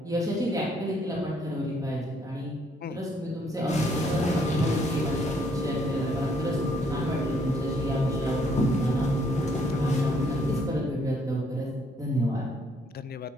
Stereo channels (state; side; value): normal; both; correlation 0.68